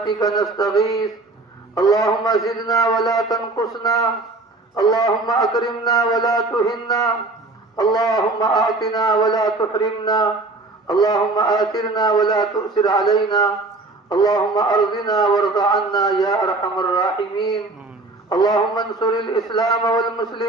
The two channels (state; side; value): quieter; left; 3.2 dB